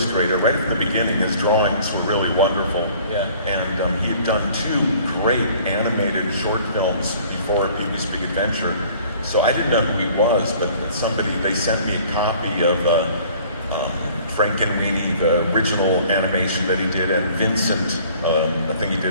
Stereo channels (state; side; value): inverted; both; correlation -0.53